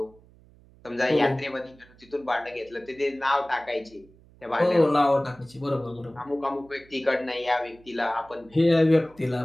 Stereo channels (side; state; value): right; noise; hum, 27 dB below the sound